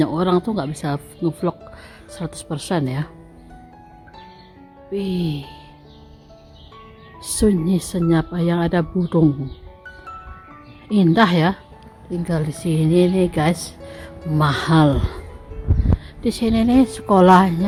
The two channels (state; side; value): identical; both; correlation 1.00